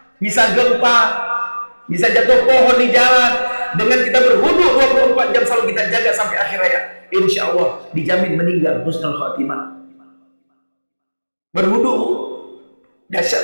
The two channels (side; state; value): both; inverted; correlation -1.00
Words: Bisa gempa, bisa jatuh pohon di jalan. Dengan kita berwudu 24 jam selalu kita jaga sampai akhir hayat, insya Allah dijamin meninggal husnul khatimah. Berwudu Bu,